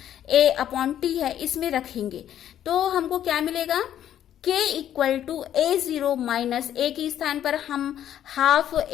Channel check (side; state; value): right; quieter; 10.8 dB